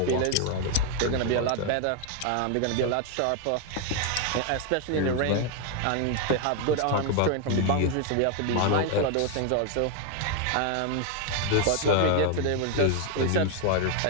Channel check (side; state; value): both; different; correlation 0.01